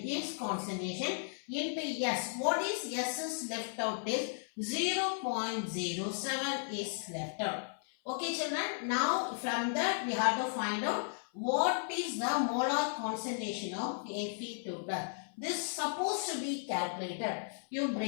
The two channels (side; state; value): right; silent; 54 dB below the other